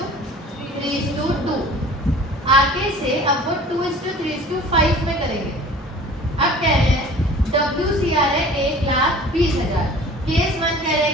आगे से अब वो 2:3:5 में करेंगे। अब कह रहे हैं WCR है 1,20,000। केस 1 कह रहे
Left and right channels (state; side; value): normal; both; correlation 0.45